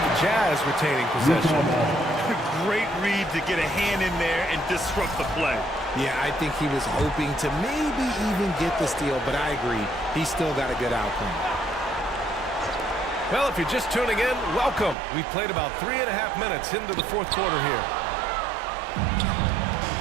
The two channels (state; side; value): drops out; left; at 15.0 s